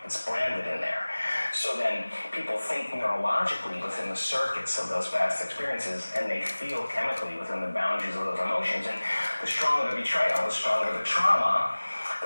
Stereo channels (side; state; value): both; inverted; correlation -1.00